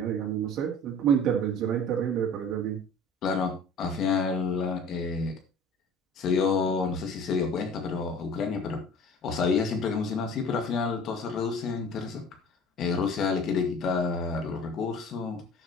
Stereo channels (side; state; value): both; normal; correlation 0.43